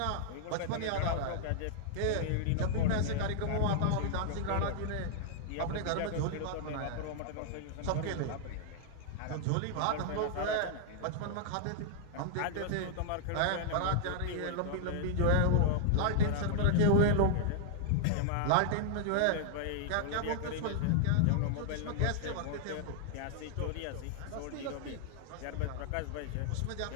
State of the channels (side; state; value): both; different; correlation -0.01